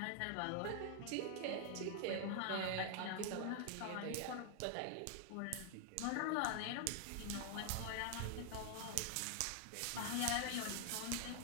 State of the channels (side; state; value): both; different; correlation 0.00